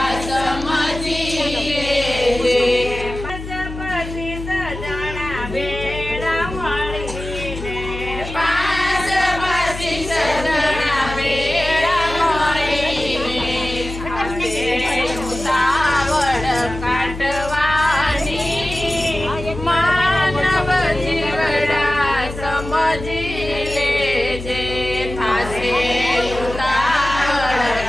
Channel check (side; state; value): left; noise; hum, 10 dB below the sound